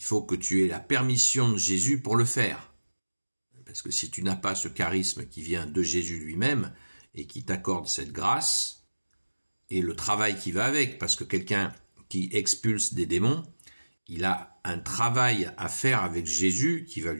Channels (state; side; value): inverted; both; correlation -1.00